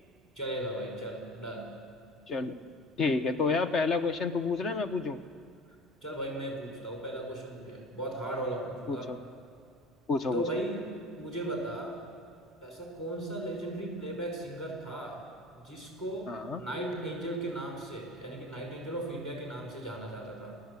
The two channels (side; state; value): both; normal; correlation 0.40